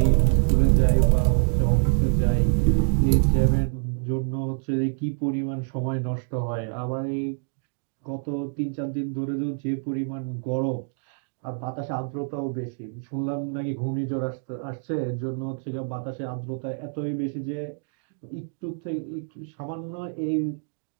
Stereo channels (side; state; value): left; silent; digital silence